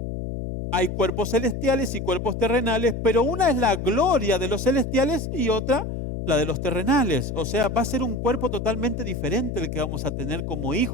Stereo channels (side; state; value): left; noise; hum, 5 dB below the sound